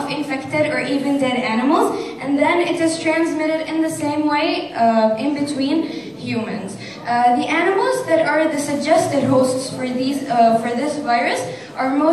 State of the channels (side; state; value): both; identical; correlation 1.00